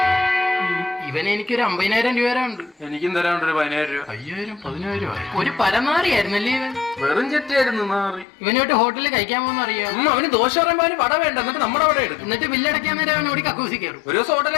ഇവന് എനിക്കൊരു 50,000 രൂപ ഉണ്ട്. എനിക്കും തരാണ്ട് ഒരു 10,000 രൂപ. 10,000 ഒരു പരനാറിയായിരുന്നല്ലേ ഇവൻ? വെറും ചെറ്റായിരുന്നു നാറി. ഇവനോട്ട് ഹോട്ടലിൽ കഴിക്കാൻ പോകുന്ന അറിയാം. അവന് ദോശ പറയുമ്പോ അവന് വട വേണ്ട, എന്നിട്ട് നമ്മുടെ അവിടെ എടുക്കും. എന്നിട്ട് ബില്ലടയ്ക്കാൻ നേരം അവൻ ഓടി കക്കൂസി കയറും. ഒരു ദിവസം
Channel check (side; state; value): right; drops out; at 8.2 s